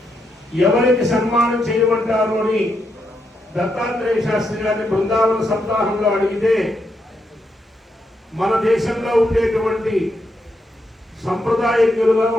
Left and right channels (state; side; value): normal; both; correlation 0.81